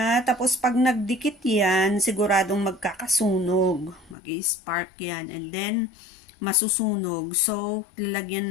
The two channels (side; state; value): right; drops out; at 4.2 s